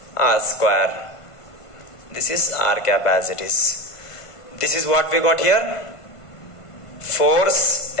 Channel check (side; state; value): right; late; 1.5 ms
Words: r square. This is r cap as it is. This is what we got here. Force